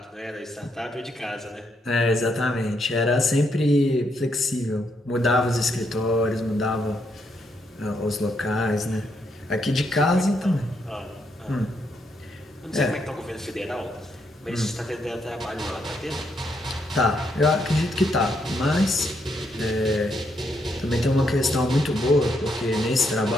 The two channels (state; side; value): normal; both; correlation 0.77